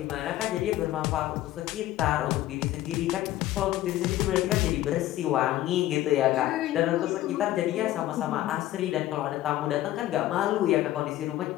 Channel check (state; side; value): quieter; right; 14.6 dB